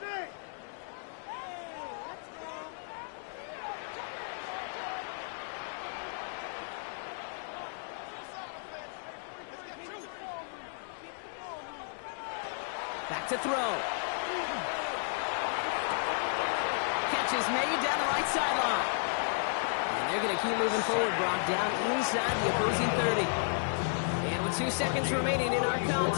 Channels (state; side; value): silent; right; digital silence